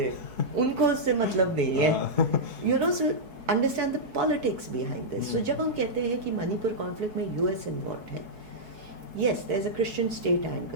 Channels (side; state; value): left; late; 4.6 ms